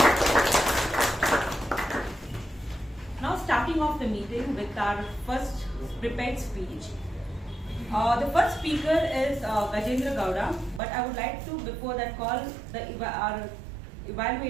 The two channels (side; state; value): left; drops out; at 10.8 s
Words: Now starting off the meeting with our first prepared speech. The first speaker is Gajendra Gaurav, but I would like to before that call our